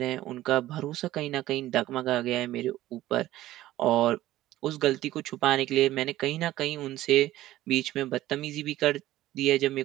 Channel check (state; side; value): quieter; left; 15.1 dB